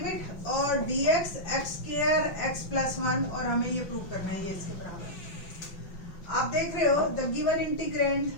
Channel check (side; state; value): right; late; 5.7 ms